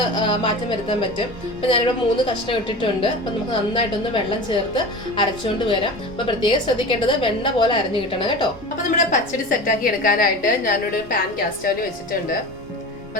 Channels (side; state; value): right; noise; rumble, 22 dB below the sound